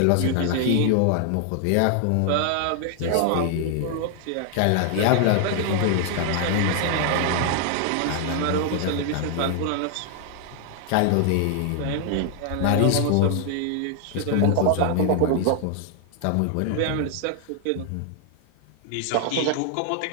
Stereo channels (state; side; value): different; both; correlation 0.00